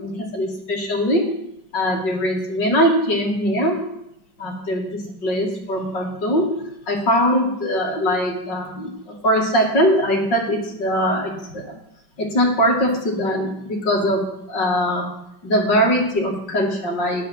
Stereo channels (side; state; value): right; late; 5.4 ms